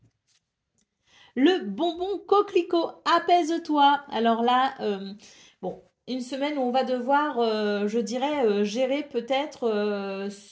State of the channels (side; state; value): both; identical; correlation 1.00